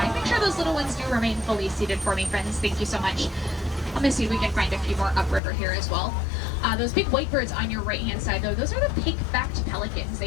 Make sure those little ones do remain fully seated for me, friends. Thank you so much. Let me see if we can find a few more upriver here as well. Those big white birds on your right-hand side, though, those are the pink-backed pelicans.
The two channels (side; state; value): right; drops out; at 5.4 s